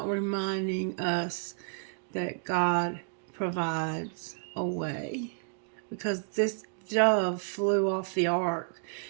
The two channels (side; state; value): left; silent; digital silence